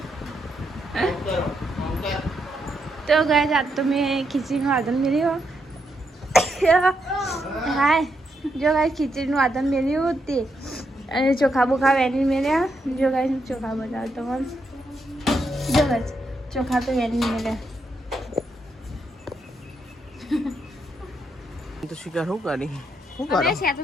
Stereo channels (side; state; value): both; normal; correlation 0.80